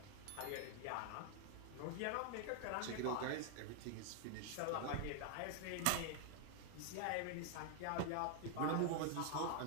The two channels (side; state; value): both; different; correlation 0.00